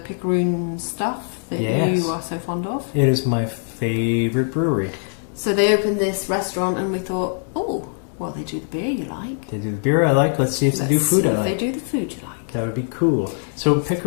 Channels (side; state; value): right; silent; 57 dB below the other